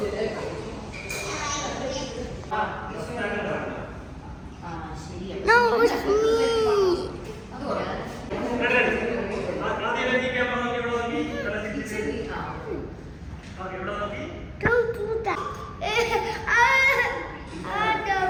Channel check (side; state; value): both; identical; correlation 1.00